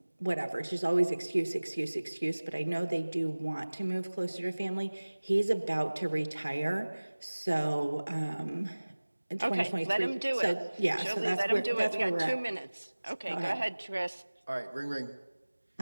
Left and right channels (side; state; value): both; inverted; correlation -1.00